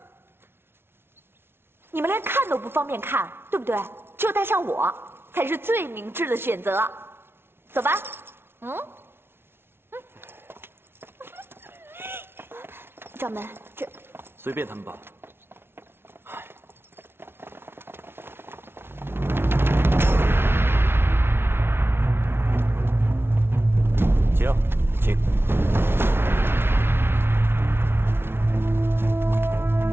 你们连看都不方便看，对不对？只有带上我，才是最明智的选择。走吧。掌门，这随便他们吧。请。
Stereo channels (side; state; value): left; late; 0.11 ms